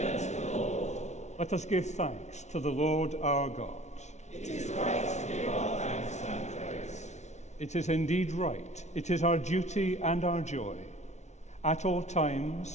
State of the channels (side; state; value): right; late; 0.33 ms